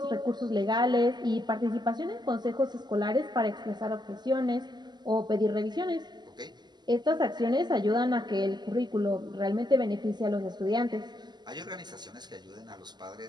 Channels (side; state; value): left; late; 0.21 ms